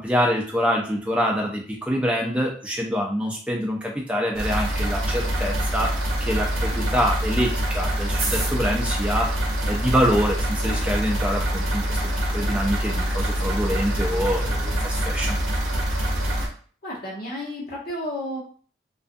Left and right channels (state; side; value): normal; both; correlation 0.75